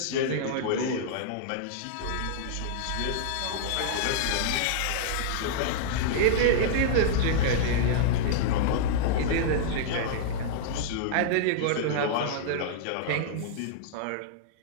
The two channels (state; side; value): different; both; correlation -0.02